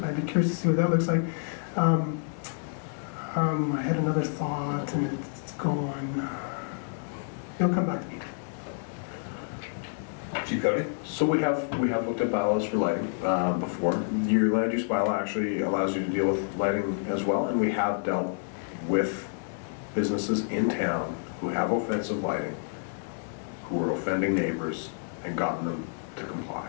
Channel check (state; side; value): silent; right; digital silence